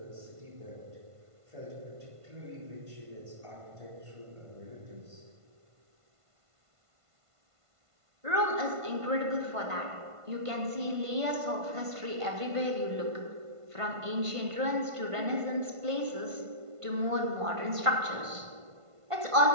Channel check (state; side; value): late; left; 1.5 ms